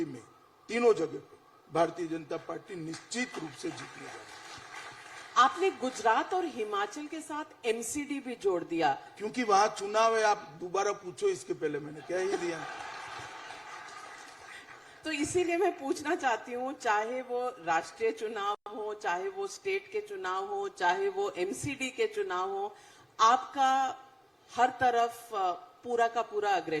में, तीनों जगह पे भारतीय जनता पार्टी निश्चित रूप से जीतने जा रही है। आपने गुजरात और हिमाचल के साथ एमसीडी भी जोड़ दिया क्योंकि वहां चुनाव है। आप दोबारा पूछो, इसके पहले मैंने कह ही दिया। तो इसीलिए मैं पूछना चाहती हूँ, चाहे वो राष्ट्रीय चुनाव हो, चाहे वो स्टेट के चुनाव हो, चाहे वो एमसीडी के चुनाव हो, आपका हर तरफ पूरा का पूरा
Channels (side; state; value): both; identical; correlation 1.00